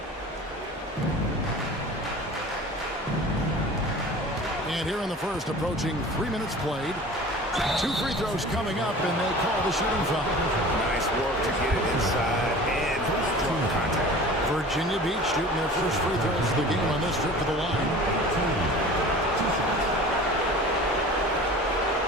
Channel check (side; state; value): both; normal; correlation 0.40